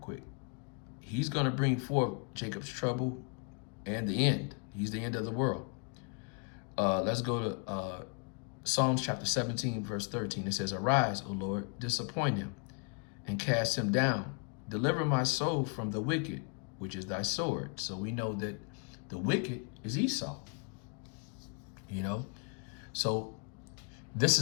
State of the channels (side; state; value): right; quieter; 38.6 dB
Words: quick. He's going to bring forth Jacob's trouble and the end. He's the end of the world. Let's go to Psalms chapter 17, verse 13. It says, "Arise, O Lord, disappoint him, and cast him down. Deliver my soul from the wicked, which is thy sword." So we know that the wicked is Esau, So this